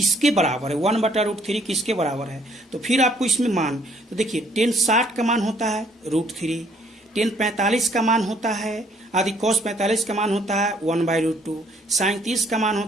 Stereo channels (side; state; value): both; normal; correlation 0.63